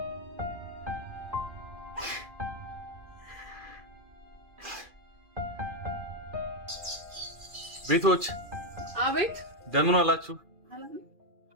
ቤቶች አቤት። እንደምን ዋላችሁ?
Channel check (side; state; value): left; late; 2.4 ms